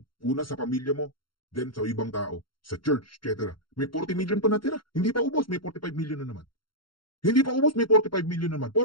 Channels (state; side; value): late; right; 0.73 ms